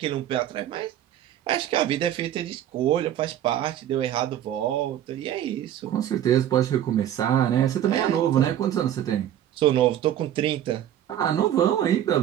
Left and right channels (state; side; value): quieter; left; 11.3 dB